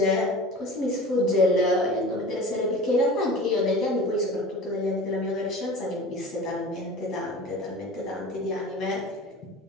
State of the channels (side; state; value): both; normal; correlation 0.37